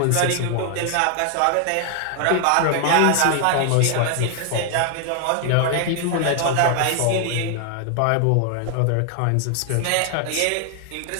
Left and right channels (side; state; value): both; different; correlation 0.00